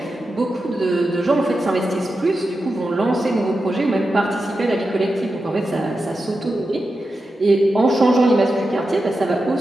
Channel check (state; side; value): normal; both; correlation 0.90